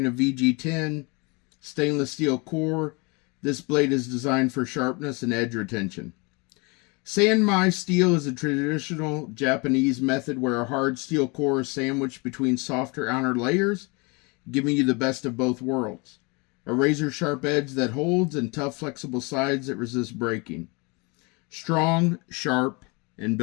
a VG10 stainless steel core, this blade is designed for sharpness and edge retention. San Mai steel is a traditional Japanese method where a hard steel core is sandwiched between softer outer layers, giving you the best of both worlds. A razor-sharp edge that holds and tough, flexible sides that resist breaking. Strong, sharp, and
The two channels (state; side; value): quieter; right; 29.1 dB